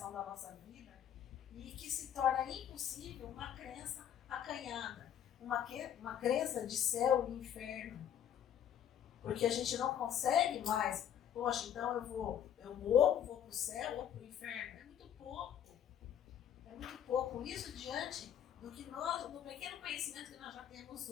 da nossa vida e que se torna impossível uma crença acanhada, uma crença de céu e inferno. Porque a gente não consegue mais, poxa, então eu morro, vou para o céu ou para o inferno. É muito pouco. É muito pouco. Isso diante do pequeno conhecimento que nós já temos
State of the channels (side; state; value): right; quieter; 9.7 dB